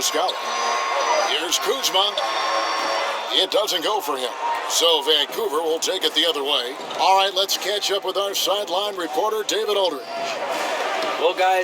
Here's Kuzma. It doesn't go for him. So Vancouver will take it the other way. All right, let's catch up with our sideline reporter, David Aldridge. Well,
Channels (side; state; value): both; identical; correlation 1.00